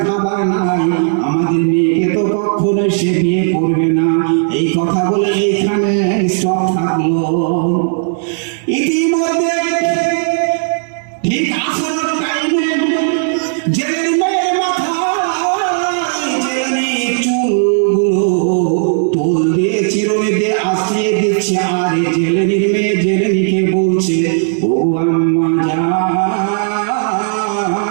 খাবার নাই, আমাদের মেয়েকে তো কখনোই সে বিয়ে করবে না। এই কথা বলে এইখানে স্টপ থাকলো। ইতিমধ্যে ঠিক আসল টাইমে জেলের মেয়ের মাথায় জেলেনি চুলগুলো তোল দিয়ে চিরুনি দিয়ে আসিয়ে দিচ্ছে, আর জেলেনির মেয়ে জেলেনিকে বলছে, ও আম্মা জান,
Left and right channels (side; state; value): left; silent; 70 dB below the other